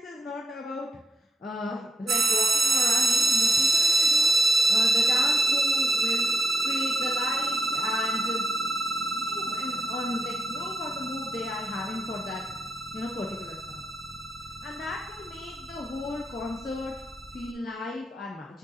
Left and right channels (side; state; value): both; normal; correlation 0.81